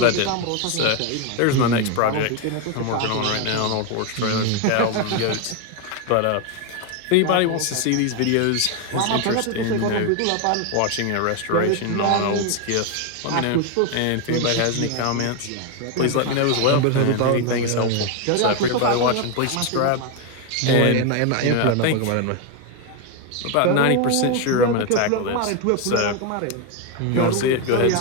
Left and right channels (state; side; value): different; both; correlation 0.01